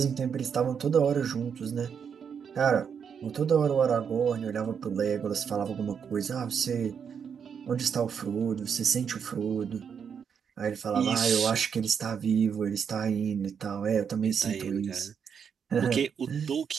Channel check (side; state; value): left; quieter; 7.1 dB